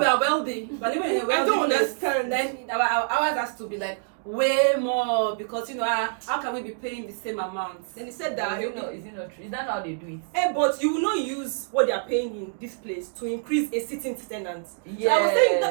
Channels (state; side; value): silent; left; digital silence